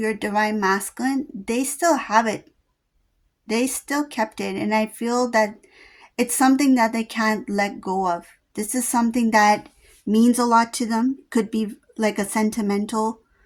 divine masculine, they still have it. They still kept it. And I feel that it's something that they can't let go of. This is something that means a lot to them. Could be like a sentimental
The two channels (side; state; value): both; identical; correlation 1.00